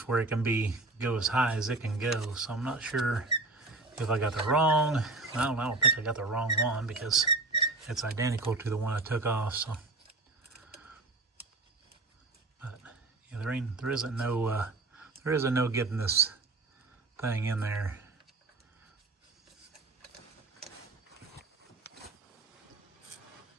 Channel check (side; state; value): left; quieter; 3.2 dB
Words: where it can go as high as it can go. So I'm not sure if I got the wrong. I don't think I got the wrong one because it's identical to the one I took off. So, but yeah, there isn't no getting this thing in there.